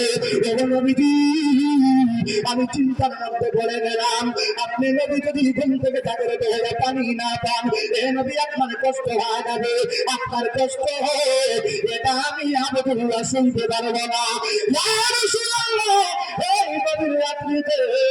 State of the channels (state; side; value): identical; both; correlation 1.00